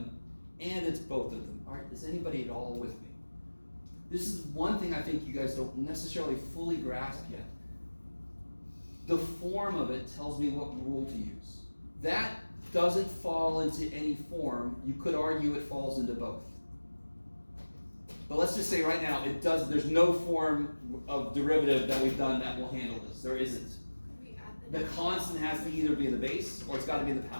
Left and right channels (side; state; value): both; inverted; correlation -1.00